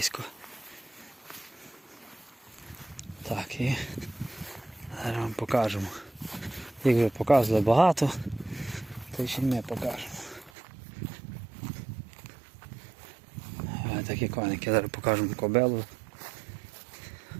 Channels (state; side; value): drops out; left; at 10.5 s